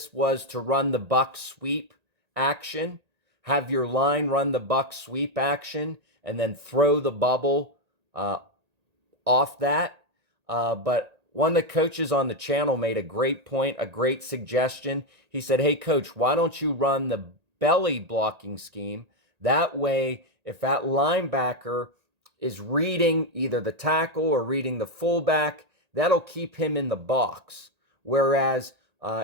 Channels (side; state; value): left; late; 1.8 ms